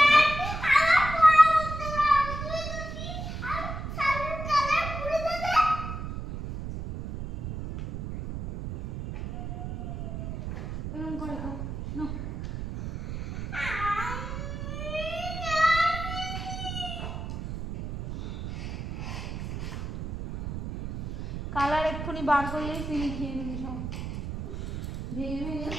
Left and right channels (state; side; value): noise; right; rumble, 6 dB below the sound